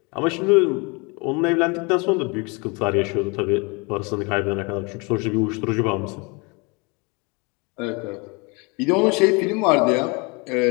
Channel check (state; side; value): quieter; right; 29.4 dB